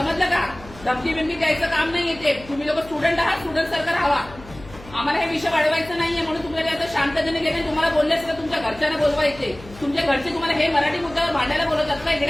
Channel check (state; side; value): noise; left; hum, 19 dB below the sound